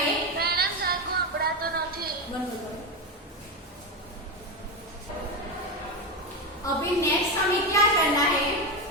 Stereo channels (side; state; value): both; normal; correlation 0.13